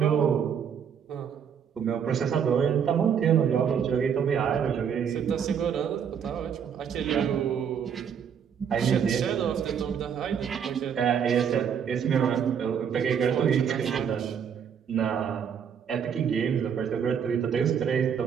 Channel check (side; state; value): left; quieter; 7.7 dB